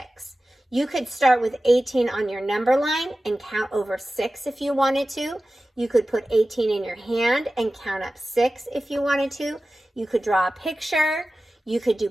You could start with 18 on your number line and count over 6 if you wanted to. You could put 18 in your hand and count up 6 if you wanted to. You could draw a picture. You could do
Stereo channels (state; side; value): normal; both; correlation 0.95